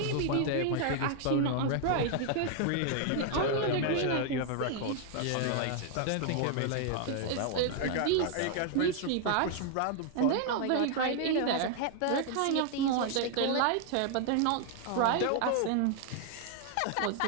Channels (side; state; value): both; different; correlation 0.00